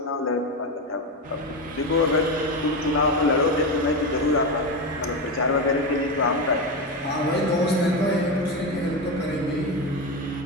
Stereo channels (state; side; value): normal; both; correlation 0.16